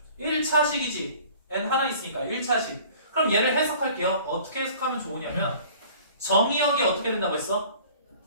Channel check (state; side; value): inverted; both; correlation -0.48